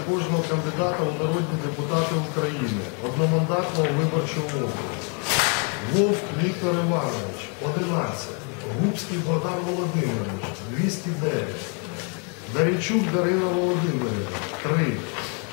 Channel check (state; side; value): quieter; right; 37.9 dB